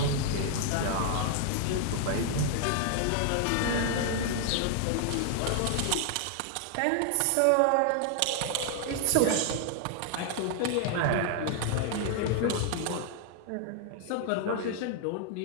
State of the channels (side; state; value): both; different; correlation 0.00